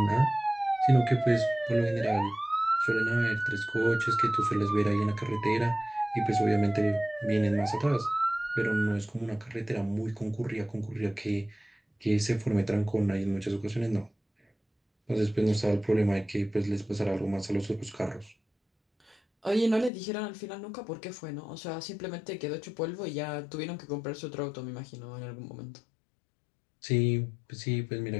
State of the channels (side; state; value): right; drops out; at 19.9 s